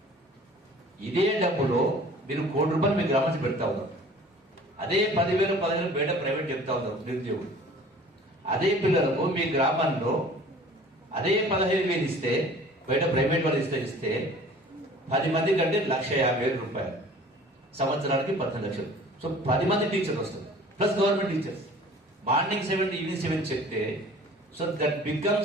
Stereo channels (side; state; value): both; normal; correlation 0.47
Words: ఇదే డబ్బులో మీరు 1 కోటి రూపాయలు మీ గ్రామానికి పెడతా ఉన్నారు. అదే 10,000 15,000 బయట ప్రైవేట్ చెప్తా ఉన్నారు నిరుద్యోగులు. అదే పిల్లలకు మీ గ్రామంలో అదే 15,000 ఇస్తే బయట ప్రైవేట్ వాళ్ళు ఇస్తే 10 మంది కంటే 1,50,000 రూపాయలు, సంవత్సరానికి 18 లక్షలు. సో 10 మంది టీచర్లు వస్తారు plus government teachers. Morning 7 to evening 7 చెప్తే so that